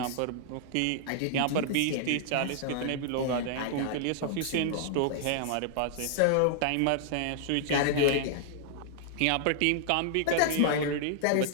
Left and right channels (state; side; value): different; both; correlation -0.01